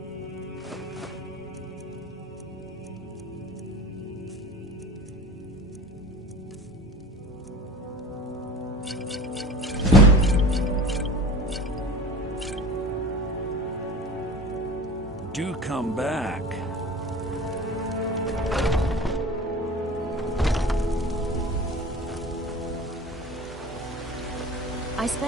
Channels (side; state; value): both; normal; correlation 0.37